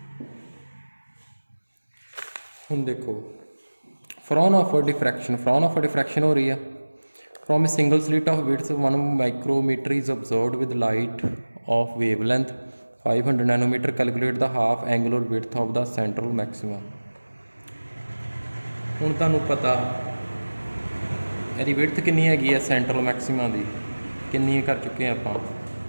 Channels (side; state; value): both; inverted; correlation -1.00